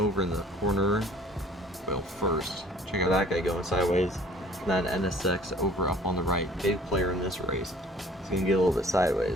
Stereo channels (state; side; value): normal; both; correlation 0.52